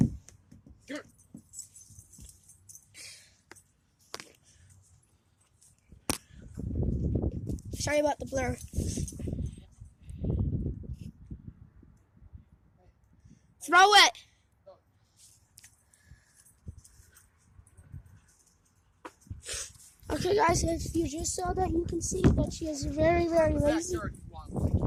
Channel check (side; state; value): both; identical; correlation 1.00